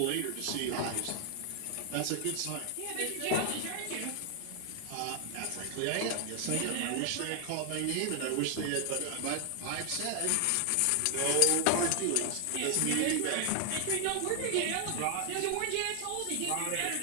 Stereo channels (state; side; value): different; both; correlation 0.00